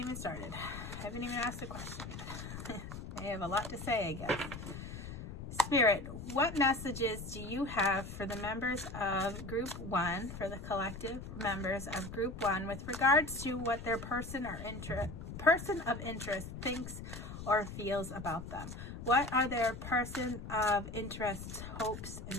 started. I haven't even asked a question yet. I have a lot to say, I guess. Spirit, what messages do you have for the members of Group 1, for the collective members of Group 1, with regards to what their person of interest thinks or feels about them? What are their person of interest's hopes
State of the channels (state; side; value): noise; left; rumble, 9 dB below the sound